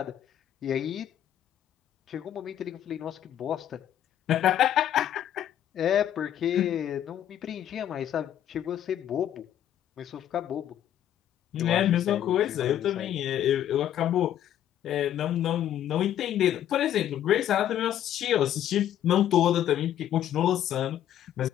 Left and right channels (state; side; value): quieter; right; 11.0 dB